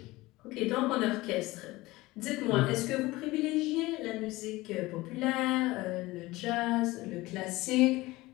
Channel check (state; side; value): quieter; right; 19.8 dB